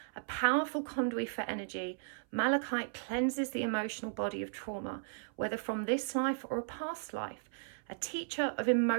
a powerful conduit for energy, malachite cleanses the emotional body of trauma, whether from this life or a past life. A teacher of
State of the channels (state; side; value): silent; left; 54 dB below the other